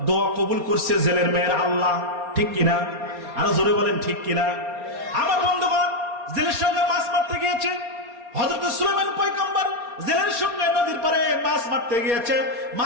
দোয়া কবুল করছে জেলের মেয়ের আল্লাহ, ঠিক কিনা? আরো জোরে বলেন ঠিক কিনা? আমার বন্ধুগণ, জেলের সঙ্গে মাছ মারতে গিয়েছে। হযরত সুলাইমান পয়গম্বর জেলের সঙ্গে নদীর পারে মাছ মারতে গিয়েছে।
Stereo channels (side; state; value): left; late; 4.3 ms